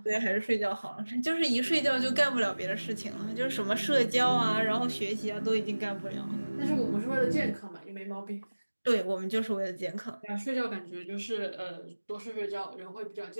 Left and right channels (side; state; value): both; inverted; correlation -1.00